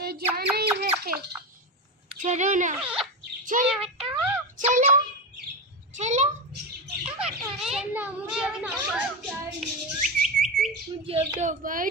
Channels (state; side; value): normal; both; correlation 0.16